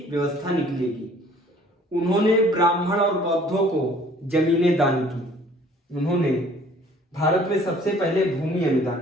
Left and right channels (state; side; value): normal; both; correlation 0.54